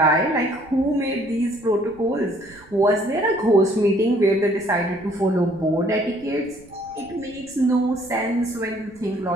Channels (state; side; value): noise; right; rumble, 25 dB below the sound